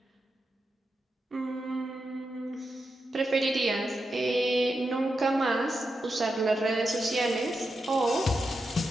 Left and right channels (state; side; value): normal; both; correlation 0.88